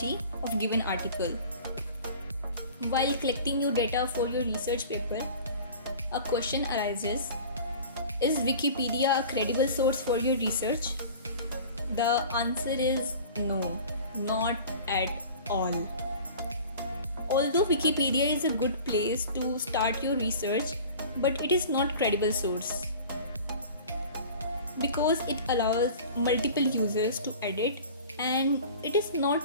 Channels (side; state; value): both; inverted; correlation -0.41